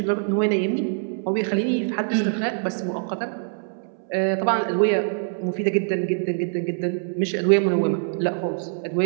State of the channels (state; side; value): silent; left; 63 dB below the other